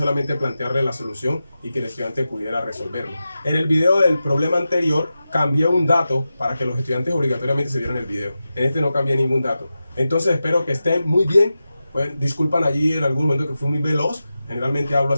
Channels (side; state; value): both; inverted; correlation -0.92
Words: plantearle la solución y que el estudiante pudiera resolverlo. En el video del problema anterior cambié un dato para que los estudiantes obligatoriamente se vieran el video. En este no cambié ningún dato. Entonces espero que estén muy bien. Pues, disculpan allí en algún momento que fui muy veloz. Generalmente hablo